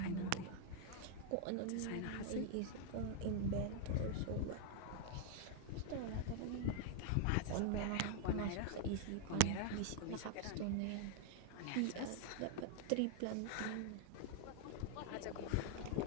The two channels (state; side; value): different; both; correlation -0.01